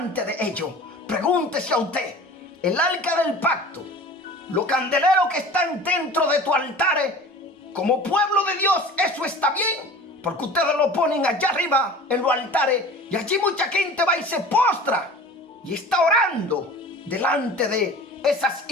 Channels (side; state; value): both; normal; correlation 0.40